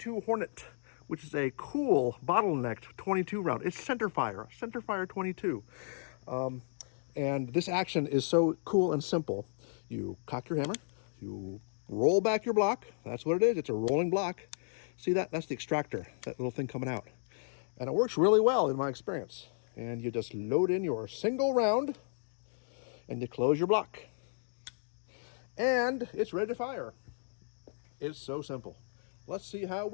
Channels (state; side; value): silent; right; digital silence